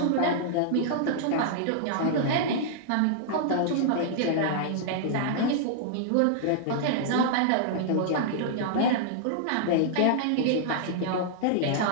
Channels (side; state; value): both; different; correlation -0.01